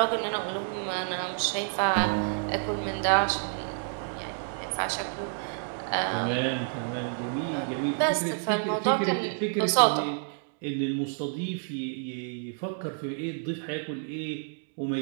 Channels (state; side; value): silent; left; 58 dB below the other